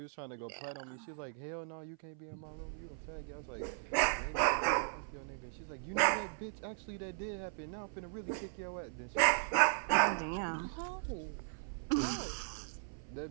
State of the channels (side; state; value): left; silent; 53 dB below the other